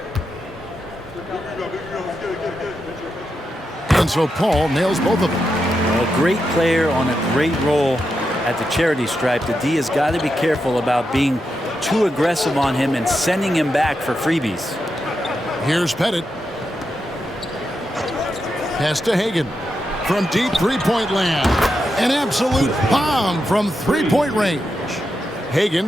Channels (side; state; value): both; normal; correlation 0.86